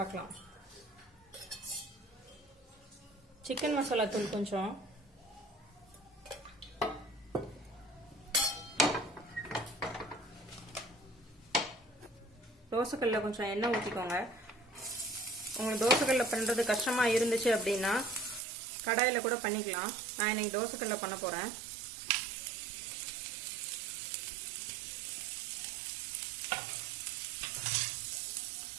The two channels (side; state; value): left; drops out; at 18.4 s